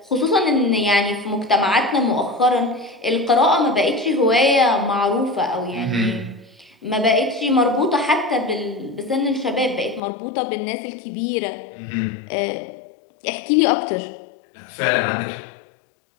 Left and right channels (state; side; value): drops out; right; at 10.0 s